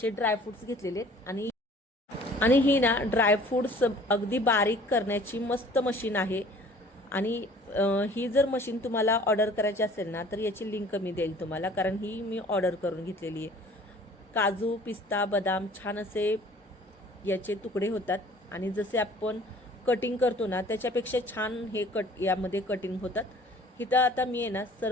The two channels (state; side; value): normal; both; correlation 0.51